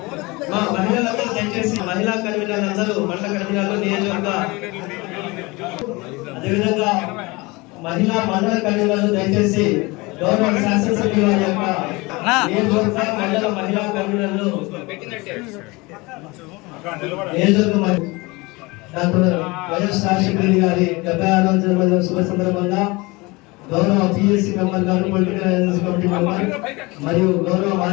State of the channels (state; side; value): quieter; right; 24.2 dB